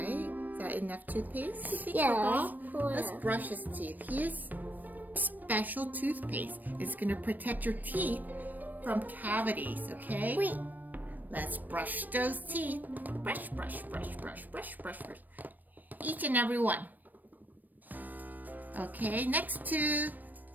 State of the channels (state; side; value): late; left; 0.087 ms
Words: Is that enough toothpaste, you think, Yeah. for Bob? Let's brush his teeth. Here's special toothpaste. It's going to protect your teeth from cavities, okay? Wait. Let's brush those teeth. Brush, brush, brush, brush, brush, brush, brush. Each and every one. Okay, next tooth.